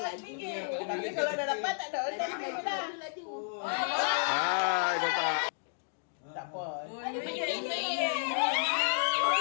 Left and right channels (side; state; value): right; silent; digital silence